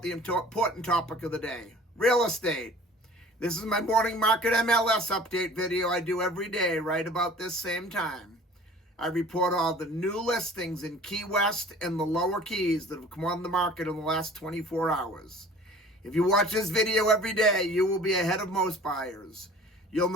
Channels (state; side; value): normal; both; correlation 0.47